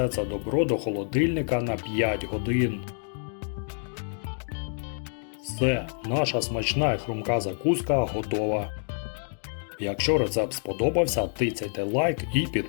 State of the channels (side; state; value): right; silent; 60 dB below the other